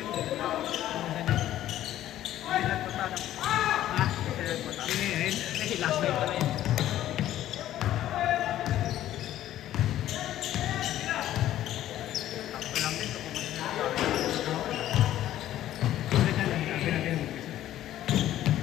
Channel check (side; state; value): right; quieter; 12.9 dB